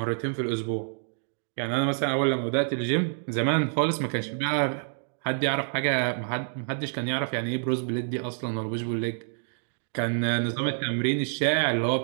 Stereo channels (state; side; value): silent; left; digital silence